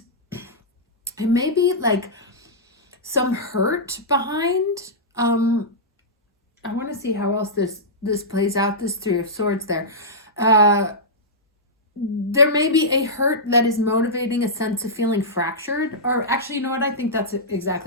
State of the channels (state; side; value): normal; both; correlation -0.13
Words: it may be like some hurt behind. I want to see how else this plays out, this 3 of Swords there. There may be a hurt that is motivating a sense of feeling fractured, or actually, you know what? I think that's